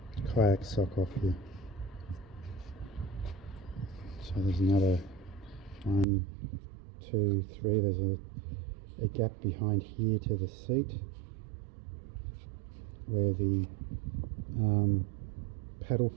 kayak sock off here. So there's another 1, 2, 3, there's a gap behind here to the seat where the paddle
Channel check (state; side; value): drops out; left; at 6.1 s